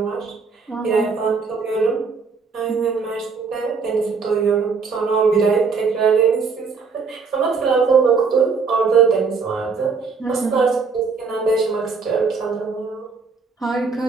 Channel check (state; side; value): quieter; left; 5.0 dB